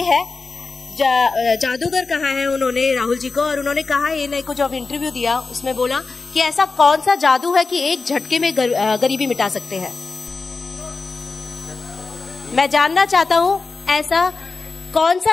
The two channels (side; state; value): right; quieter; 4.1 dB